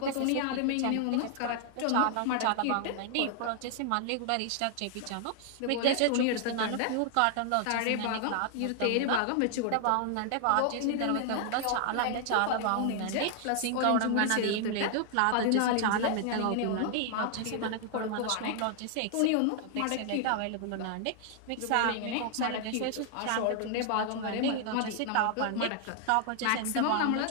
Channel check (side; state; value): both; different; correlation 0.00